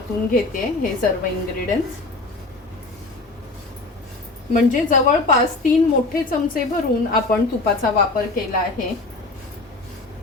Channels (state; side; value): quieter; right; 3.2 dB